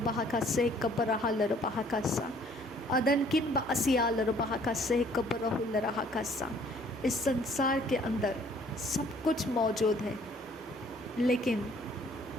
बहकस्से कबरहलर बहकसा अदनकिन बअसियालर बहकस्से कबरहुलर हकसा। इस संसार के अंदर सब कुछ मौजूद है, लेकिन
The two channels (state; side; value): normal; both; correlation 0.59